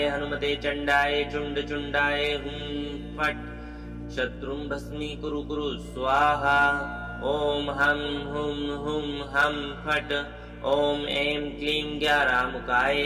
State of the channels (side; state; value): both; identical; correlation 1.00